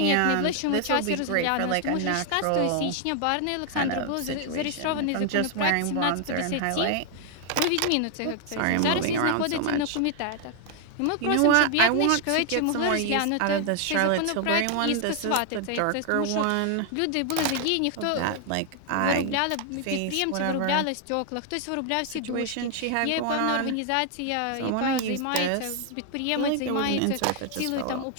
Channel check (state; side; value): different; both; correlation 0.00